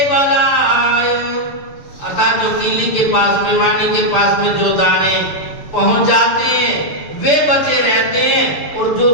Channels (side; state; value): right; late; 6.9 ms